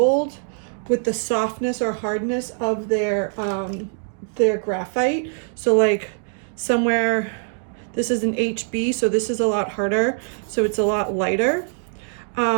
with the softness or hardness of their graphite. So like somewhere, this is an HB, so this is a lot harder, so it's a lot lighter.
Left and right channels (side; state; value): left; silent; 59 dB below the other